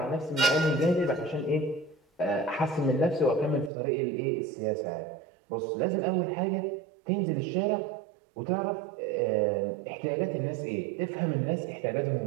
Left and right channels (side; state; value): left; drops out; at 3.7 s